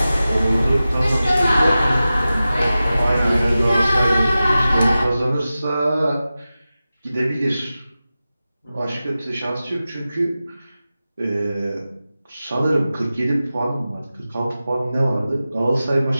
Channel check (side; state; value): both; inverted; correlation -0.94